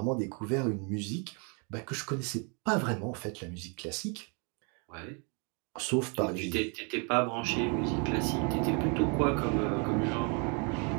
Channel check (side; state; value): left; quieter; 35.6 dB